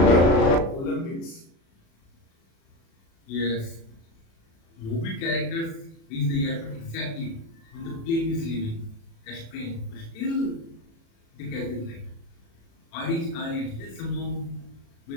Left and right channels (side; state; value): right; late; 36 ms